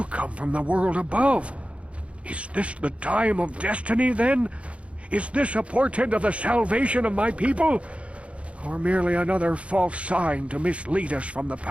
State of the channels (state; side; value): late; left; 0.062 ms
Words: come from the world above. Is this the time of destiny, then? Is this a portent of the salvation of my people? Or merely another false sign to mislead us from the